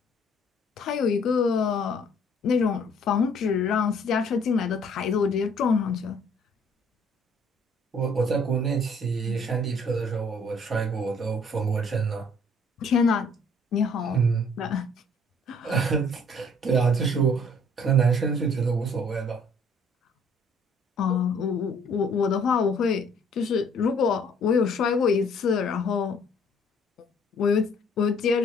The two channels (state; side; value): normal; both; correlation 0.59